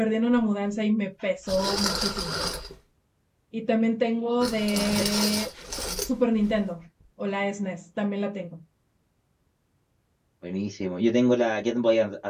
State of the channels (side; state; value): both; identical; correlation 1.00